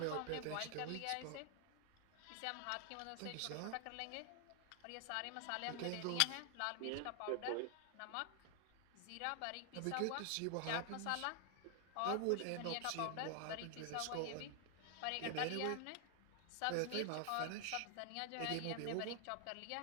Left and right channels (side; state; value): both; different; correlation 0.00